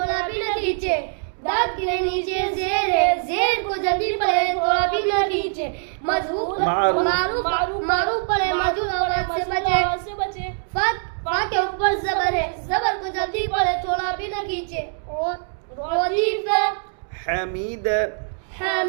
بھی نہ کھینچے. دال کے نیچے زیر ہے، زیر کو جلدی پڑے تھوڑا بھی نہ کھینچے. معروف معروف پڑے مجھول آواز سے بچے. فا کے اوپر زبر ہے، زبر کو جلدی پڑے تھوڑا بھی نہ کھینچے. ردیف حمید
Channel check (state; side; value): silent; left; digital silence